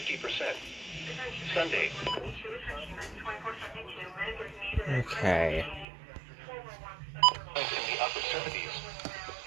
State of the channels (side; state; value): left; drops out; at 5.9 s